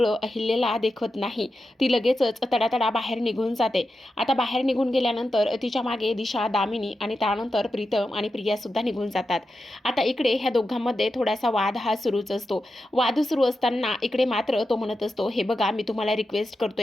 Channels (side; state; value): both; normal; correlation 0.90